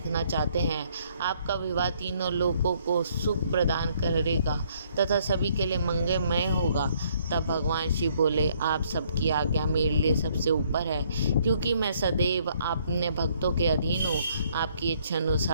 चाहते हैं। आपका विवाह तीनों लोगों को सुख प्रदान करेगा तथा सभी के लिए मंगलमय होगा। तब भगवान शिव बोले, आप सबकी आज्ञा मेरे लिए सबसे ऊपर है, क्योंकि मैं सदैव अपने भक्तों के अधीन हूँ। आपकी इच्छा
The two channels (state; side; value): inverted; both; correlation -0.66